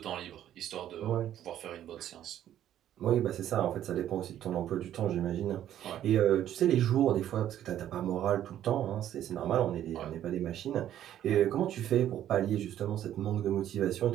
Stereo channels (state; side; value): quieter; left; 11.4 dB